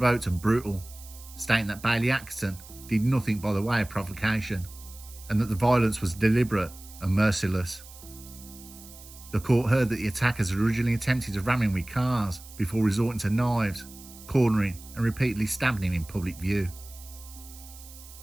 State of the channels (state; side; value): noise; right; hiss, 19 dB below the sound